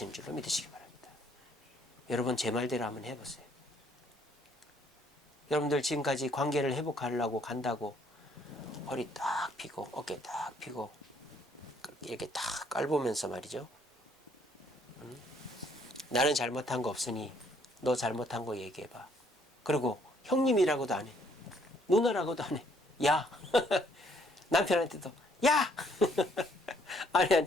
줄로 믿으시기 바랍니다. 여러분, 제 말대로 한번 해보세요. 여러분들 지금까지 관계를 회복하려고 간다고 허리 딱 펴고 어깨 딱 펴고 이렇게 딱 깔보면서 말이죠. 나는 잘못한 거 없으니 너 잘못한 거 얘기해봐. 그리고 형님이라고도 안 해. 누나라고도 안 해. 야. 남편한테도 야.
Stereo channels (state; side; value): normal; both; correlation 0.66